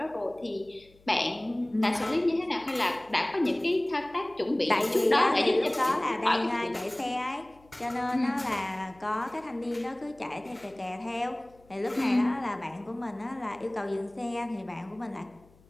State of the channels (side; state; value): left; noise; hum, 28 dB below the sound